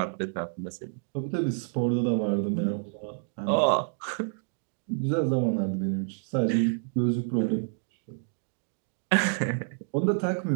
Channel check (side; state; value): left; silent; digital silence